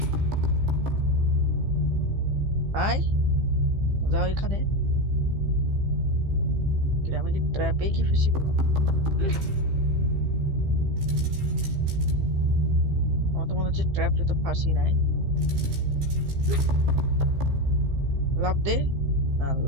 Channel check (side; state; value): left; late; 15 ms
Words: আয় যাও এখানে। আমি কি ট্র্যাপে কি ফেসে গেলাম? আমার তো মনে হচ্ছে ট্র্যাপে তো ফাঁসি নাই। লাভ দে না,